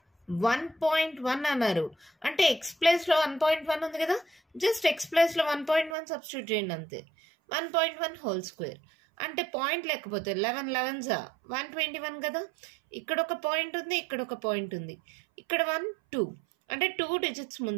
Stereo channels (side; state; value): left; drops out; at 6.0 s